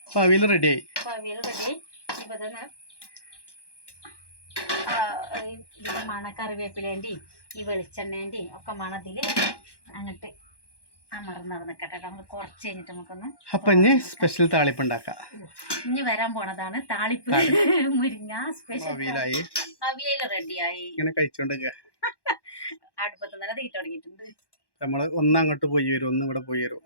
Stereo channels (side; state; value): right; late; 1.1 ms